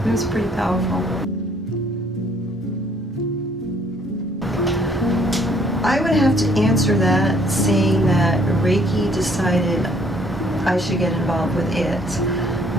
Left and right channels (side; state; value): both; normal; correlation 0.63